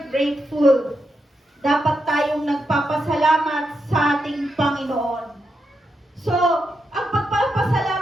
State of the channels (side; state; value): both; normal; correlation 0.84